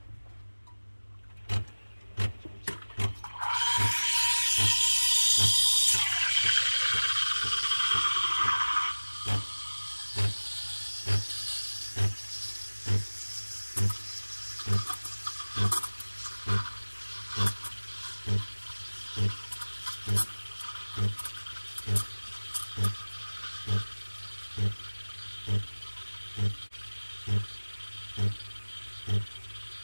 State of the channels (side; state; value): both; inverted; correlation -1.00